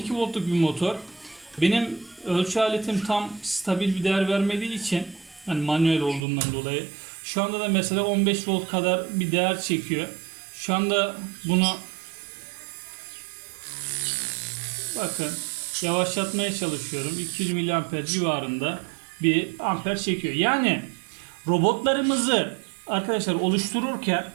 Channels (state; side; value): drops out; left; at 6.2 s